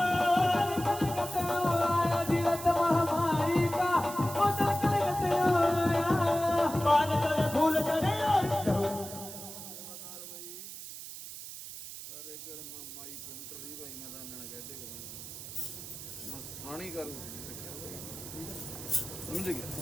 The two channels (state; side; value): noise; right; hiss, 11 dB below the sound